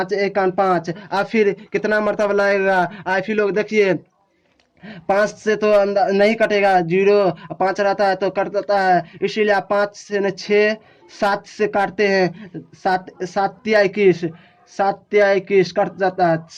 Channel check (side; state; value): both; identical; correlation 1.00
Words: 1 5। अब फिर कितना मरतबा लाएगा, आप ही लोग देखिए, 5 से तो नहीं कटेगा, 0 5 रहता है तो कट जाता है, इसीलिए आप 5 से 6 7 से काटते हैं, 7 7 तिया 21, 7 तिया 21 कट जाता है